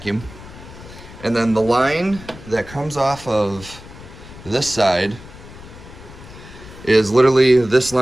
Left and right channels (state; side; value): noise; left; rumble, 17 dB below the sound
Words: and then the line that comes off of this side is literally this